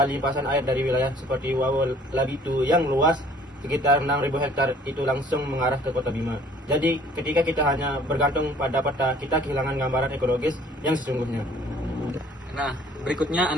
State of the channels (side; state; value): both; normal; correlation 0.55